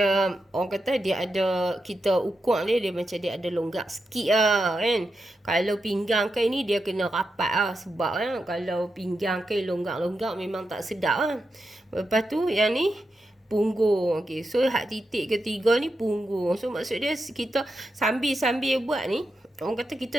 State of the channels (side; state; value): both; normal; correlation 0.87